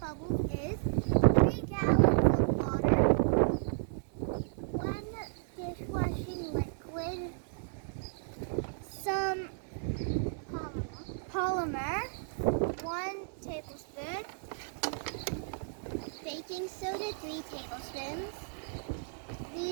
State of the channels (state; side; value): silent; left; 56 dB below the other